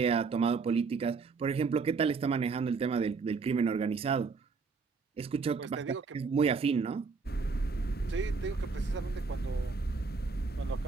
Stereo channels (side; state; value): left; quieter; 4.7 dB